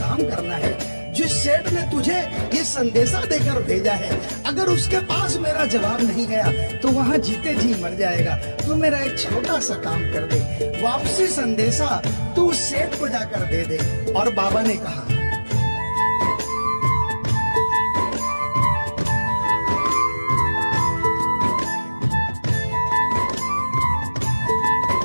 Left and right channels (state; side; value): inverted; both; correlation -1.00